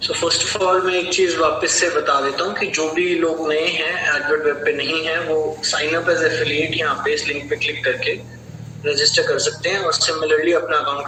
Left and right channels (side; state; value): both; identical; correlation 1.00